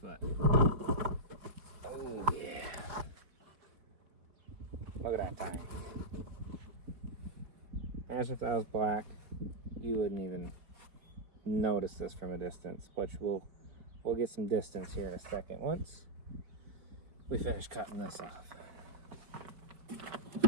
Oh yeah. Look at that tire. Imagine if that was black, you wouldn't even notice this from a distance, which we'll get some distance here in a second once we finish cutting this off.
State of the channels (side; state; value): left; late; 4.7 ms